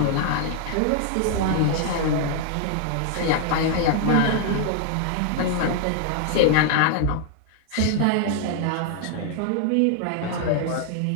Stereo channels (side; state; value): both; different; correlation 0.00